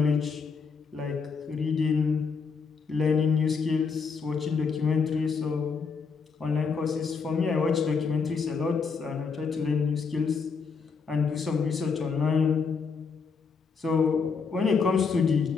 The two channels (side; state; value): right; quieter; 5.3 dB